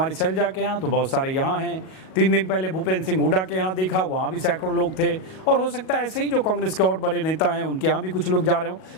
शैलजा के यहाँ, तो बहुत सारे यहाँ हैं। 3 दिन पहले भूपेंद्र सिंह हुड्डा के यहाँ देखा, वहाँ भी सैकड़ों लोग थे। और हो सकता है ऐसे ही जो कांग्रेस के और बड़े नेता हैं उनके यहाँ भी कुछ लोग जा रहे हों।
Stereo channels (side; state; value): right; late; 37 ms